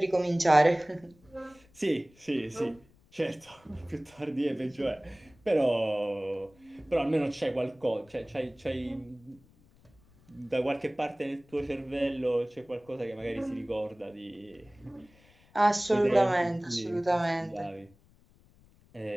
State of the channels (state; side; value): noise; left; rumble, 29 dB below the sound